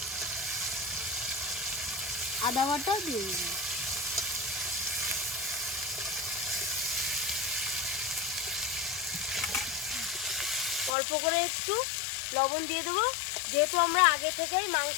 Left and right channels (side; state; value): right; drops out; at 10.9 s